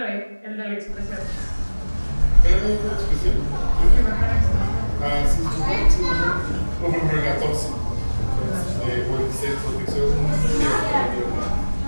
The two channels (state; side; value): inverted; both; correlation -1.00